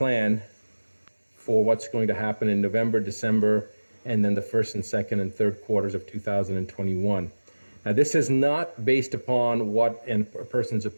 for what's going to happen in November, December, and then the first and second and third quarters of 2021. Now, this is not based upon what a person's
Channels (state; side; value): inverted; both; correlation -1.00